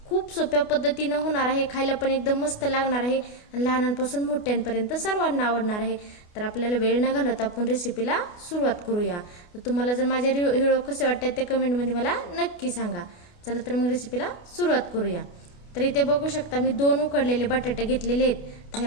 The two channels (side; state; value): right; late; 28 ms